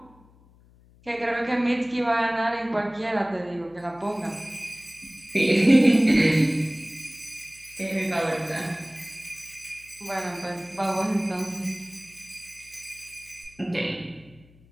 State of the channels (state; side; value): noise; left; hum, 27 dB below the sound